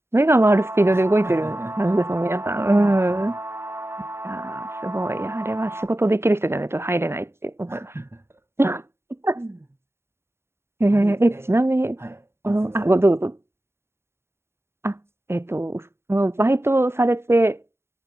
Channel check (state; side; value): late; left; 0.12 ms